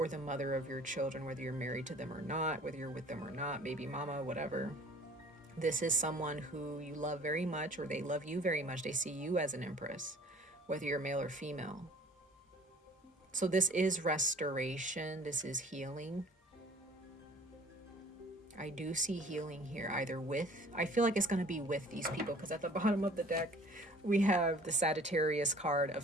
the mother of your children, whether you're married to them or not, whether you're with them or not, baby mama, whatever. This is someone who you love very much, or they love you very much. They see you as an empress, whether you're male or female. So this is restoration. This is healing. I do see healing here, either with, I feel like it's going to be with these people, because at the bottom of the deck, we have the Sagittarius card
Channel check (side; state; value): both; normal; correlation 0.50